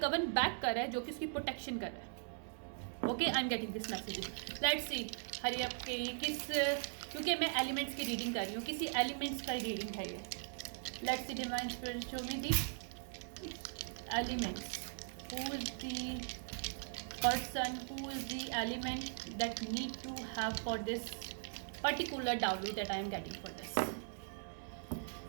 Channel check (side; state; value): left; silent; digital silence